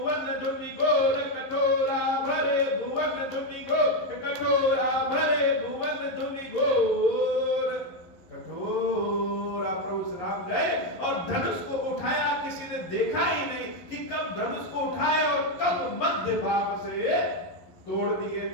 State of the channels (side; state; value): right; late; 11 ms